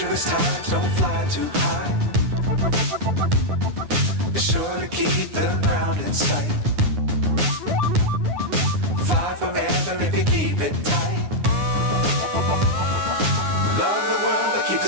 Times don't fly too high. Be sure to keep the ground in sight. Fly forever if you keep it tight. Love the world but keep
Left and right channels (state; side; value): late; left; 9.7 ms